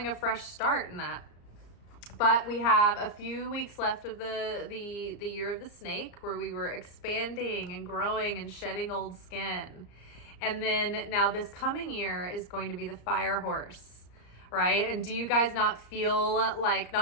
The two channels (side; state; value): right; late; 34 ms